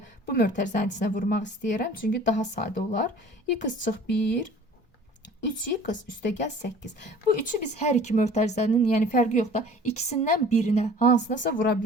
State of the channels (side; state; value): both; normal; correlation 0.48